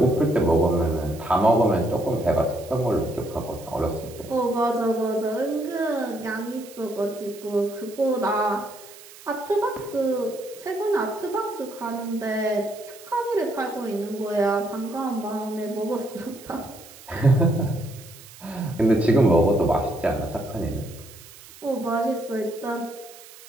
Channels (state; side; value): noise; right; hiss, 19 dB below the sound